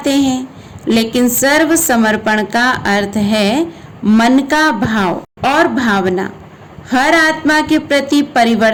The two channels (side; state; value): both; identical; correlation 1.00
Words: हैं। लेकिन सर्व समर्पण का अर्थ है मन का भाव और भावना हर आत्मा के प्रति